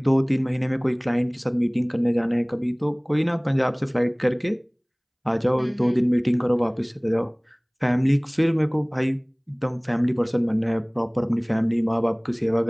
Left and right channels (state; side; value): identical; both; correlation 1.00